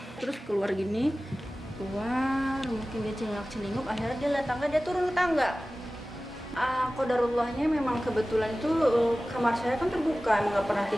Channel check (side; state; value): both; normal; correlation 0.97